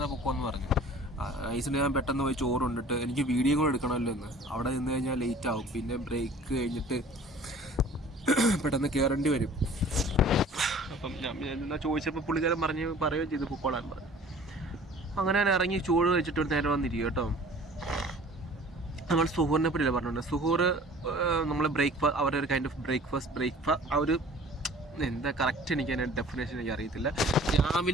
പൊക്കോന്ന് പറഞ്ഞു. റൈസിന് ഞാൻ പെട്ടെന്ന് പോയി ചോറ് കൊണ്ടിട്ട് എനിക്ക് വീഡിയോ കൂടെ എടുക്കണമല്ലോ എന്ന്. അവിടെ നിന്ന് കഴിഞ്ഞാൽ ലേറ്റ് ആവും. പിന്നെ ബ്രേക്ക് കഴിഞ്ഞിട്ട് പെട്ടെന്ന് കയറേണ്ടി വരും. അപ്പം ഞാൻ ചോദിച്ചപ്പോൾ പുള്ളിക്കാരൻ പറയുകയും ചെയ്തു പൊക്കോളാൻ പറഞ്ഞു. അങ്ങനെ ഞാൻ ഇറങ്ങി ചോറ് കഴിച്ചിട്ട് ഒരു നേരം വന്നിരിക്കും കേട്ടോ. നമ്മൾ സുഹൂറിനെ പറ്റിയല്ല പറഞ്ഞിട്ടുണ്ട്. സുഹൂർ നമ്മൾ അവരുടെ ഒരു കൈൻഡ് ഓഫ് ബ്രേക്ക്ഫാസ്റ്റ് ആ ഒരു എന്താ കറക്റ്റ് എനിക്ക് അതിൻ്റെ ഡെഫിനേഷൻ എനിക്ക് അറിയത്തില്ല.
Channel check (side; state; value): both; normal; correlation 0.48